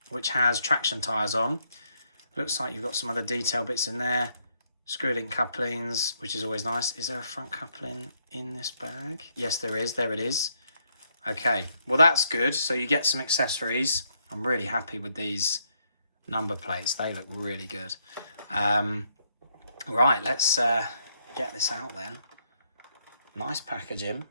which has traction tyres on. Looks like you've got some other detail bits in there. Screw-link couplings, which is always nice. Is there a front coupling in this bag? Yes, there is. There it is. Okay, well that's good. So you get some accessories. I'm really happy with these number plates. They look really good. Right, let's get this out then. Nice packaging.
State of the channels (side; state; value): both; inverted; correlation -0.74